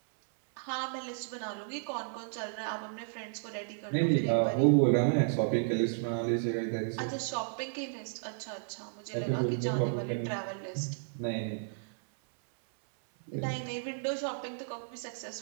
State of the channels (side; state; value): left; silent; 56 dB below the other